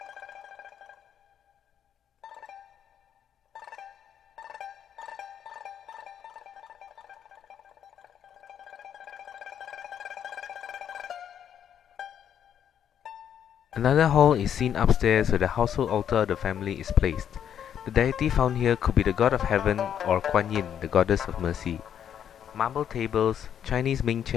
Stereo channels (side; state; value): right; quieter; 9.1 dB